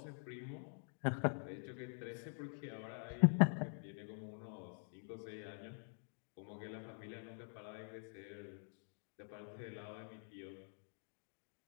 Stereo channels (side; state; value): right; silent; digital silence